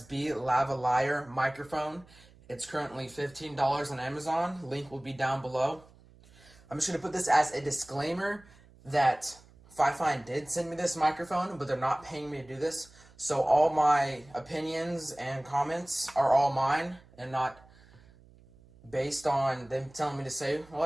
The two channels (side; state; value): right; noise; hum, 25 dB below the sound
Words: lavalier microphone. It's currently $15 on Amazon. Link will be down below. I'm just going to put this as a disclaimer that FiFine did send me this microphone, but they're not paying me to do this. So all my opinions and comments are all mine and not based on them telling me to say